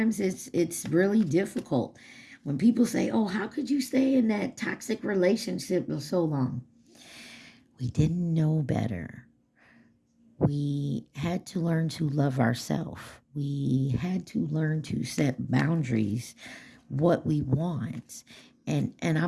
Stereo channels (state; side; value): identical; both; correlation 1.00